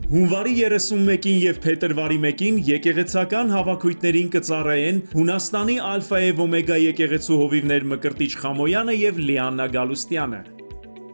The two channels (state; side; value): inverted; both; correlation -1.00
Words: Հունվարի 31-ին եւ փետրվարի 1-ին եկեղեցական հավաքույթներին կծառայեն Հունաստանի Ալֆա եւ Օմեգա եկեղեցու հովիվներ Մկրտիչ Խամոյանը եւ Լիաննա Գալուստյանը։